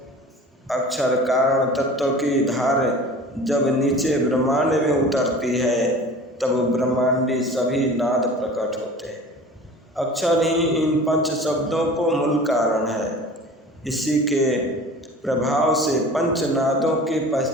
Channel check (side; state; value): both; normal; correlation 0.41